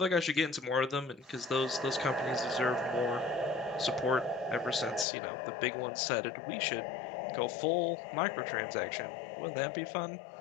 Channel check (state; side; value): drops out; right; at 5.1 s